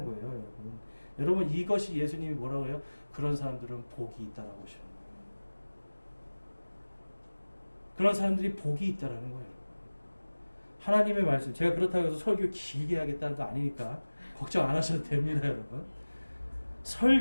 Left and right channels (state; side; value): inverted; both; correlation -1.00